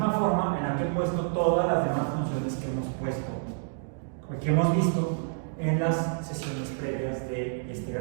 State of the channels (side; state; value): left; silent; digital silence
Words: forma en la que he puesto todas las demás funciones que hemos visto en las sesiones previas de este